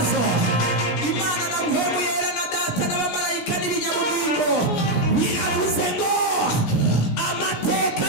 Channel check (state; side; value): late; right; 17 ms